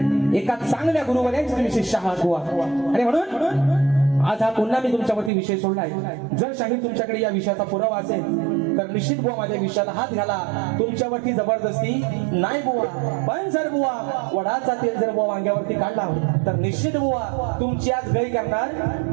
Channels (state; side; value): drops out; left; at 5.3 s